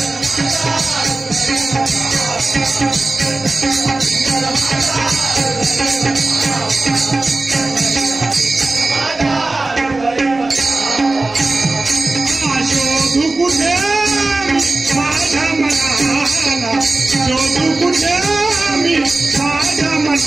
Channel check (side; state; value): left; quieter; 3.1 dB